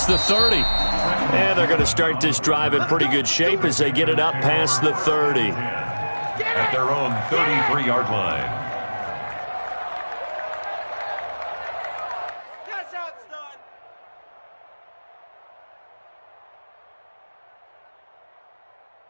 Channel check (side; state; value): both; inverted; correlation -1.00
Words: the 30. And they're going to start this drive in pretty good shape as they get it up past the 30. At their own 33-yard line.